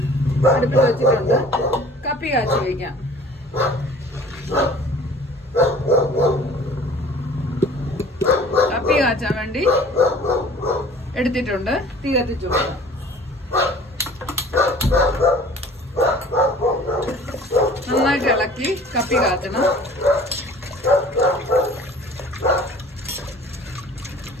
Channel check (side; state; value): both; normal; correlation 0.48